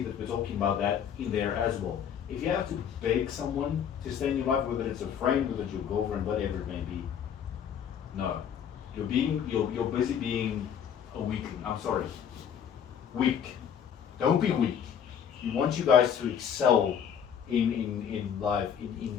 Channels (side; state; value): right; quieter; 8.3 dB